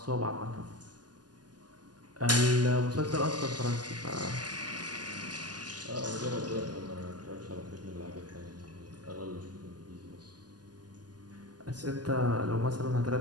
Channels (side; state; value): left; late; 0.70 ms